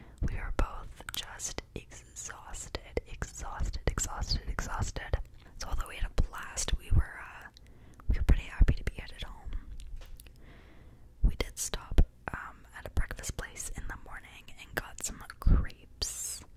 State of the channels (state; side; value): identical; both; correlation 1.00